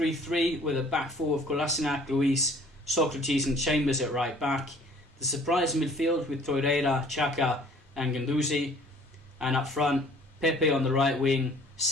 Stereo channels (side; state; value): both; normal; correlation 0.54